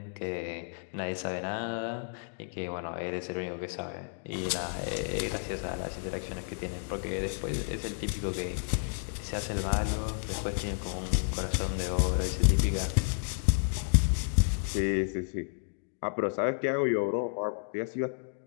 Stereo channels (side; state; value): right; silent; digital silence